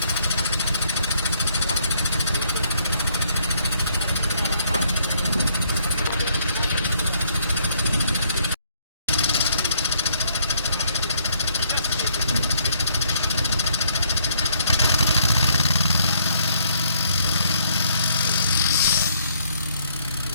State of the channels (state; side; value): inverted; both; correlation -0.68